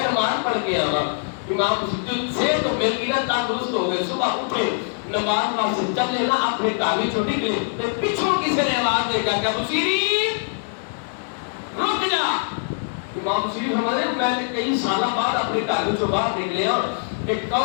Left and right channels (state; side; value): silent; right; digital silence